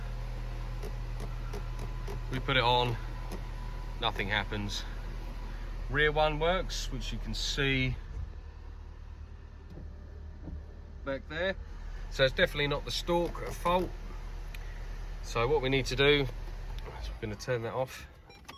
We put it on, nothing happens. Rear one works, which you can see back there. So it's definitely not the stalk at fault. So what we need to do is we're going to turn that off.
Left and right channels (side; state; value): both; identical; correlation 1.00